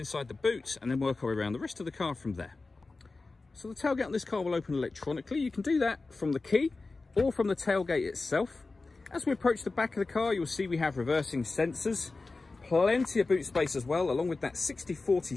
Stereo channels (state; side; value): quieter; right; 3.6 dB